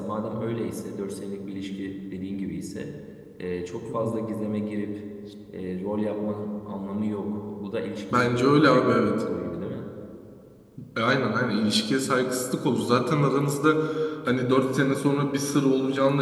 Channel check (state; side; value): identical; both; correlation 1.00